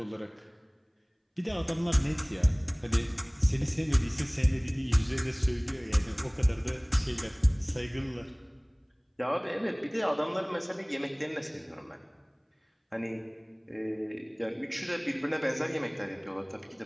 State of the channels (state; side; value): identical; both; correlation 1.00